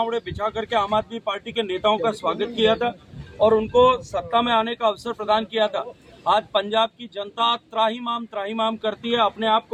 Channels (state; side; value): identical; both; correlation 1.00